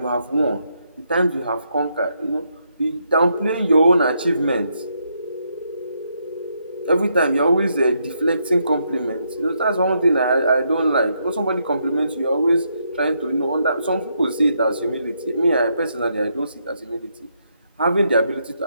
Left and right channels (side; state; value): both; inverted; correlation -0.78